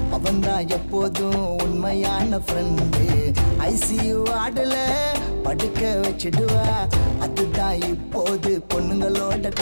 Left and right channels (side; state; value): both; inverted; correlation -1.00